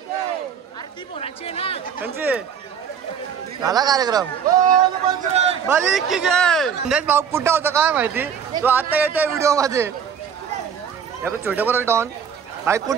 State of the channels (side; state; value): left; quieter; 7.5 dB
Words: झाला कार्यक्रम. बली की जय. संदेश भाऊ कुठं होता काय माहिती. तो आता येतोय व्हिडिओ मध्ये. छोटे बरोबर डॉन भाई